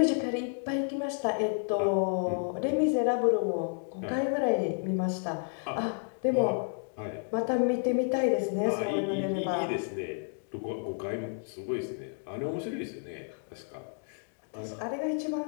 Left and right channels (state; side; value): silent; right; 57 dB below the other